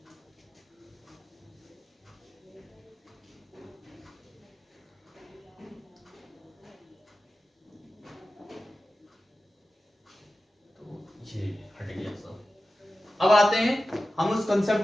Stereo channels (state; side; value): normal; both; correlation 0.94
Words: ये हट गया सब। अब आते हैं हम उस